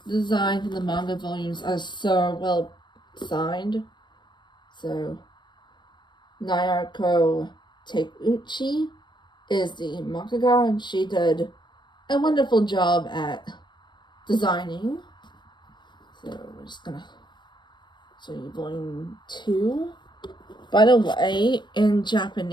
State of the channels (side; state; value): right; late; 0.22 ms